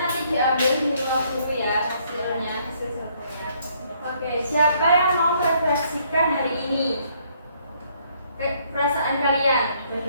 nanti diambil di luar dulu ya hasilnya. Oke, siapa yang mau merefleksikan hari ini? Perasaan kalian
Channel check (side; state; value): both; inverted; correlation -0.67